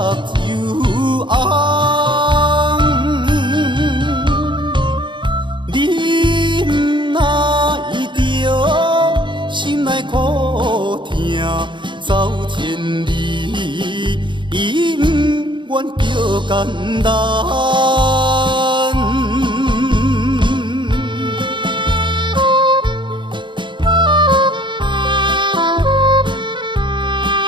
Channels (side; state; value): left; late; 0.23 ms